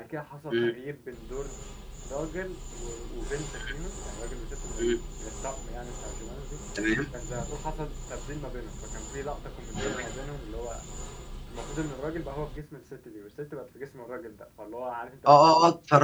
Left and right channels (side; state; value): both; identical; correlation 1.00